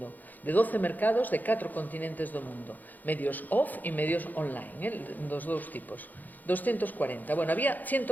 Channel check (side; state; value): right; late; 0.083 ms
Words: de 12 mercados de 4 continentes do mundo, medios off e medios online, dos dous tipos. 240. Bueno, había